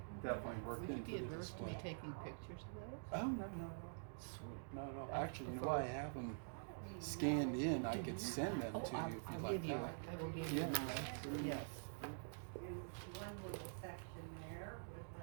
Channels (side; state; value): left; silent; digital silence